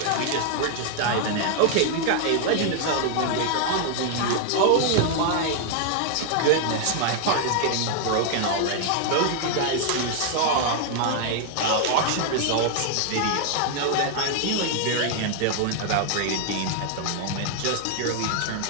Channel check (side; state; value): both; different; correlation 0.00